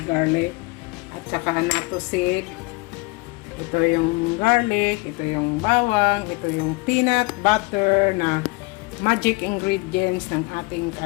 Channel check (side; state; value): right; quieter; 25.3 dB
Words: garlic. At saka natusik. Ito yung garlic, ito yung bawang, ito yung peanut butter na magic ingredients ng ating